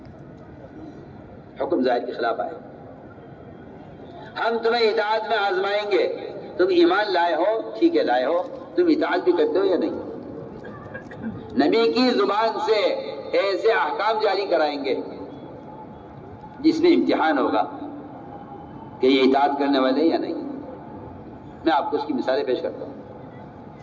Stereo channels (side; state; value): both; identical; correlation 1.00